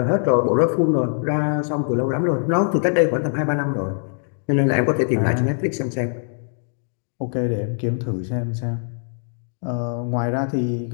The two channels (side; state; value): right; silent; 64 dB below the other